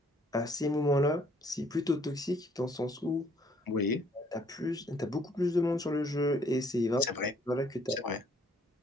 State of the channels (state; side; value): normal; both; correlation 0.63